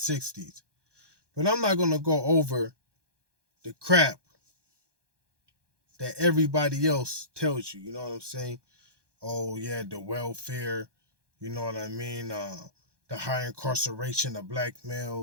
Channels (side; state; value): left; late; 1.2 ms